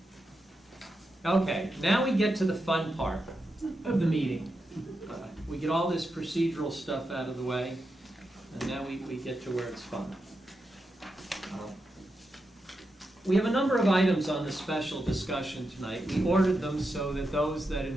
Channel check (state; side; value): normal; both; correlation 0.87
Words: Okay, now we get to the fun part of the meeting. We get all this procedural stuff out of the way, and now we get to where it's fun. We have a number of items on the special discussion tonight. We ordered them so that those that